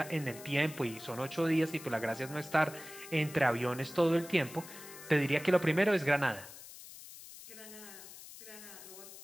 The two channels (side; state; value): left; noise; hiss, 15 dB below the sound